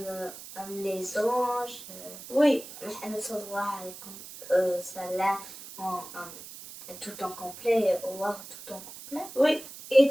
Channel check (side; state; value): right; noise; hiss, 14 dB below the sound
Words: Les anges, Oui. Muhammad sallallahu alayhi wa sallam, tout en complet, Allah tout en complet. Oui.